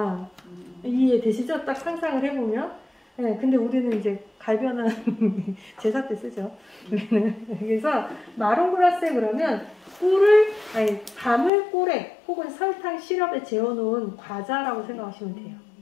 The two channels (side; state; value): right; drops out; at 11.5 s